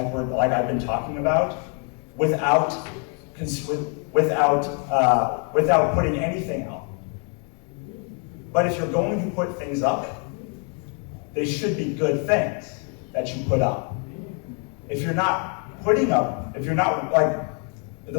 I've been talking about, without putting anything out. But if you're going to put things up, they should be good things that you put up. If you're not putting up, if you're not, like,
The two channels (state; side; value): quieter; right; 39.8 dB